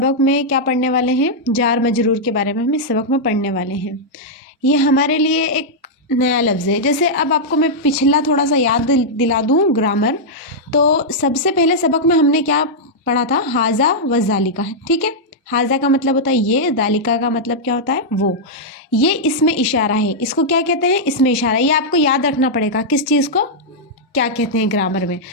में क्या पढ़ने वाले हैं? जार मजरूर के बारे में हम इस सबक में पढ़ने वाले हैं। ये हमारे लिए एक नया लफ्ज़ है। जैसे अब आपको मैं पिछला थोड़ा सा याद दिला दूँ ग्रामर, तो सबसे पहले सबक में हमने क्या पढ़ा था? हाजा व ज़ालिका। ठीक है, हाजा का मतलब होता है ये, ज़ालिका का मतलब क्या होता है? वो। ये इसमें इशारा है, इसको क्या कहते हैं? इसमें इशारा। ये आपको याद रखना पड़ेगा किस चीज़ को क्या कहते हैं ग्रामर में।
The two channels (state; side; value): normal; both; correlation -0.07